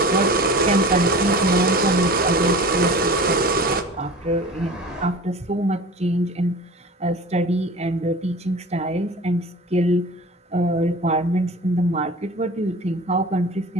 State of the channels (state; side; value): normal; both; correlation 0.37